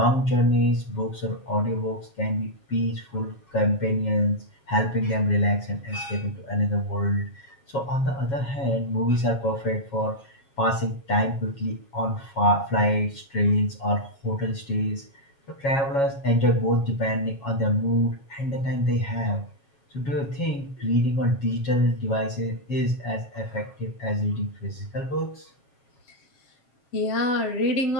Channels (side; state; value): right; late; 7.3 ms